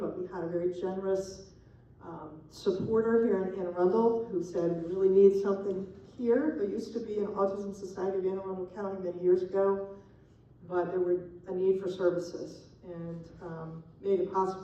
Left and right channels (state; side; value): identical; both; correlation 1.00